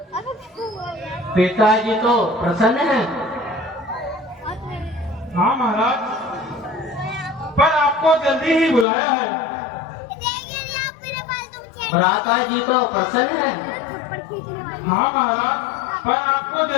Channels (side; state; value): right; drops out; at 8.8 s